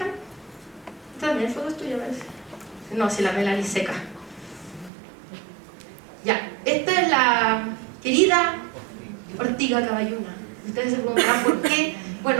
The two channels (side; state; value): left; drops out; at 4.9 s